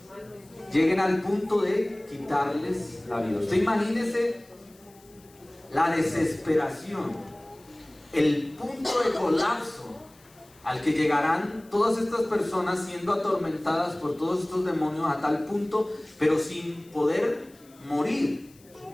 lleguen al punto de quitarles la vida. Usted imagínese la desesperación, el punto de colapso al que llegarán todas estas personas siendo atormentadas por todos estos demonios a tal punto, pero sin poder morir.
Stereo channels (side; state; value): left; noise; hiss, 27 dB below the sound